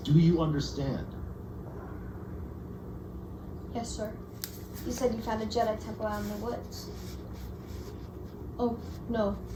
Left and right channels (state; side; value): identical; both; correlation 1.00